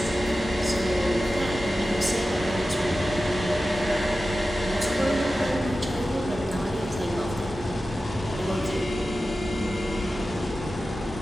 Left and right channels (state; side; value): normal; both; correlation 0.94